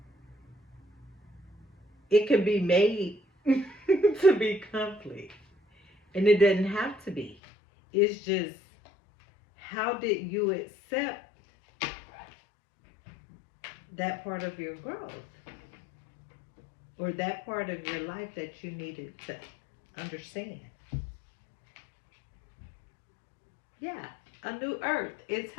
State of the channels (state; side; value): drops out; right; at 7.4 s